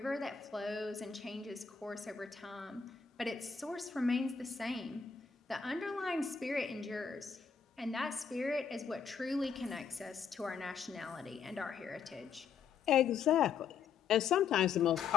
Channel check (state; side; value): quieter; right; 6.4 dB